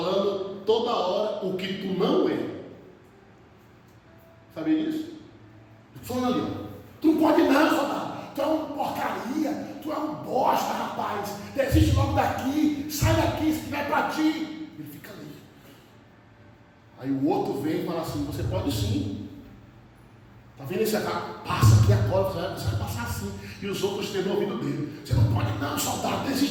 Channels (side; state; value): both; identical; correlation 1.00